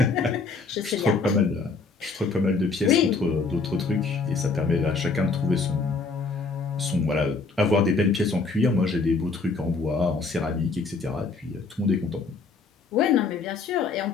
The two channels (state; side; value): quieter; right; 4.2 dB